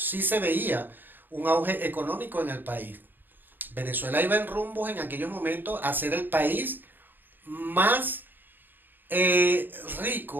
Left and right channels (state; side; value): late; left; 0.092 ms